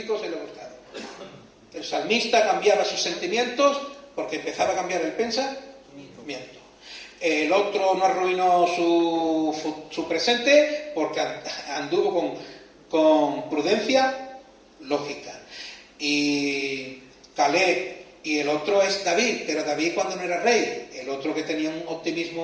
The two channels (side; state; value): both; identical; correlation 1.00